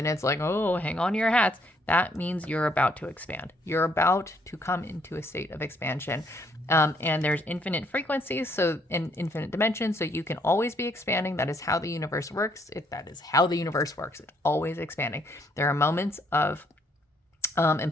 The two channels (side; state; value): both; normal; correlation 0.69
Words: it's like, oh, hang on to your hats, that means you're about to expand. You're about to come into a state of expansion. And there's infinite frequencies, so in infinite dimensions, so you can always be expanding. That is how the universe works. That is how the universe works. It's always expanding. There are moments of